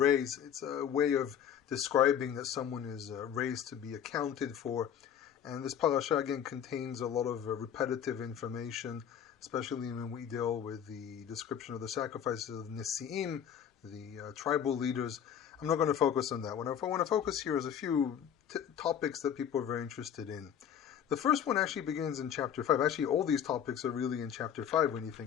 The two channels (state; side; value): quieter; right; 8.9 dB